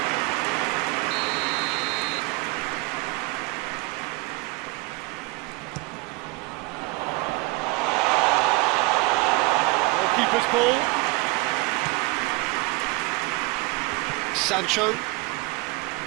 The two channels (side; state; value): left; quieter; 24.9 dB